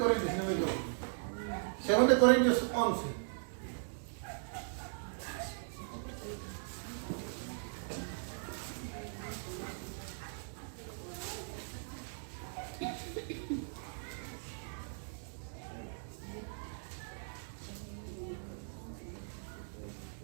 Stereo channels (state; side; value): silent; left; digital silence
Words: si no me equivoco. 2 Corintios 11.